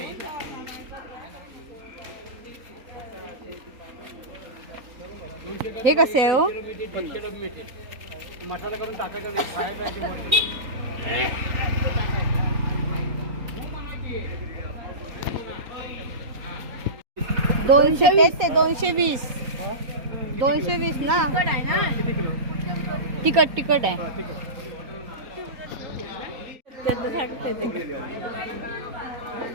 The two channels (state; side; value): late; left; 3.8 ms